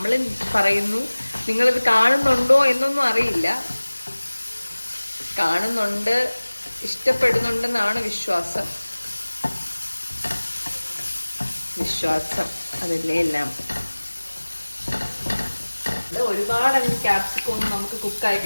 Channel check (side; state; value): both; inverted; correlation -1.00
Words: പറയുന്നു, നിങ്ങളിത് കാണുന്നുണ്ടോ എന്നൊന്നും അറിയില്ല. കാണുന്നുണ്ട്, ഇഷ്ടപ്പെടുന്നുണ്ടെന്നാണ് വിശ്വാസം. അതല്ലേ എല്ലാം. ഒരുപാട് ക്യാപ്സിക്കം ഒന്നും നമുക്ക് കുക്കായി